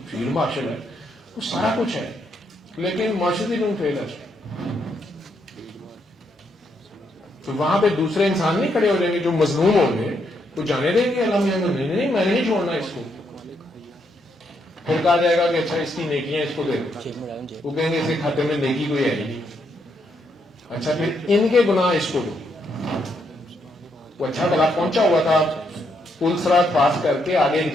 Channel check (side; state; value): both; normal; correlation 0.77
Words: فیلڈ مارشل ہے, وہ سارا کچھ ہے, لیکن معاشرتی لوگ فیلر. تو وہاں پہ دوسرے انسان نہیں کھڑے ہو جائیں گے جو مظلوم ہوں گے, وہ جانے دیں گے اللہ میاں نہیں, میں نے نہیں چھوڑنا اس کو. پھر کہا جائے گا کہ اچھا اس کی نیکیاں اس کو دے دو, وہ کہیں گے اس کے کھاتے میں نیکی کوئی ہے نہیں. اچھا پھر ان کے گناہ اس کو دو. وہ اچھا بلا پہنچا ہوا تھا پل سرات پاس کر کے آگے ایک